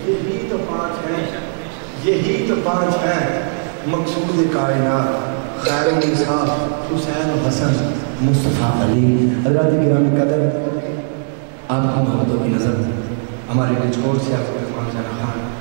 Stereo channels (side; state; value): left; silent; digital silence